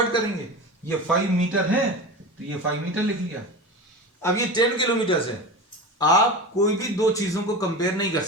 करेंगे। ये 5 मीटर है तो ये 5 मीटर लिख लिया। अब ये 10 किलोमीटर है, आप कोई भी दो चीजों को कंपेयर नहीं कर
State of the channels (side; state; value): both; normal; correlation 0.28